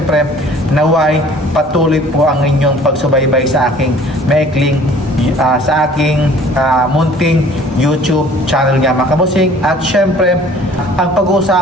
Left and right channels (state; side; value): normal; both; correlation 0.51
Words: naway patuloy po ang inyong pagsubaybay sa aking maikling sa aking munting YouTube channel nga mga kabusing. At syempre ang